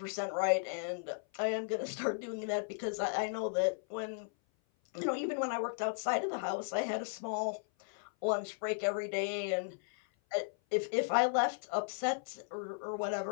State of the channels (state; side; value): silent; right; 54 dB below the other